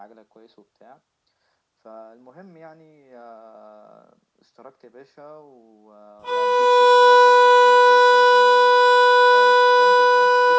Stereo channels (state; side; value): identical; both; correlation 1.00